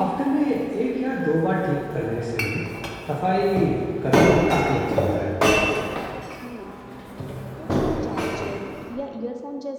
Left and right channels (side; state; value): both; identical; correlation 1.00